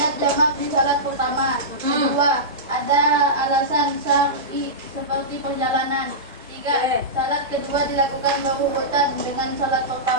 jamak di salat pertama. Kedua, ada alasan syar'i seperti perjalanan. Tiga, salat kedua dilakukan berurutan dengan salat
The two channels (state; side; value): normal; both; correlation -0.15